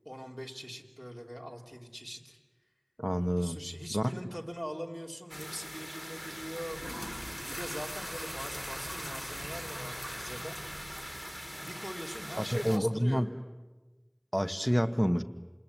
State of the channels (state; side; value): identical; both; correlation 1.00